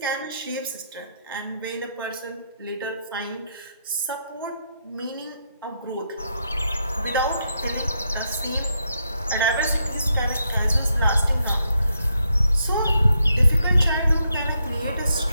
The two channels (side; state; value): both; inverted; correlation -0.79